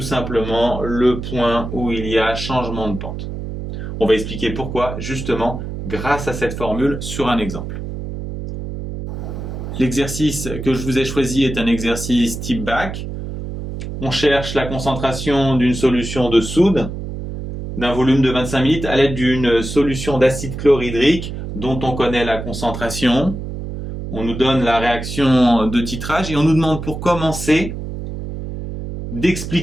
simplement le point où il y a changement de pente. On va expliquer pourquoi, justement, grâce à cette formule sur un exemple. L'exercice que je vous ai choisi est un exercice type bac. On cherche la concentration d'une solution de soude d'un volume de 25 ml à l'aide d'une solution d'acide chlorhydrique dont on connaît la concentration. On nous donne la réaction de titrage et on nous demande pour commencer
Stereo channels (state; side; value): noise; right; hum, 7 dB below the sound